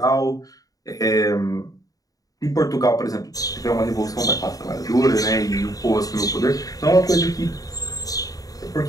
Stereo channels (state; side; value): late; right; 0.18 ms